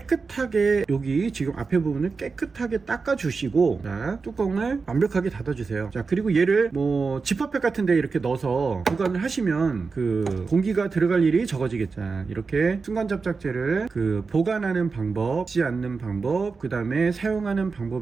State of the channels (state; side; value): quieter; left; 4.6 dB